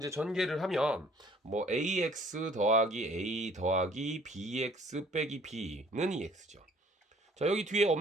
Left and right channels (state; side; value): normal; both; correlation 0.57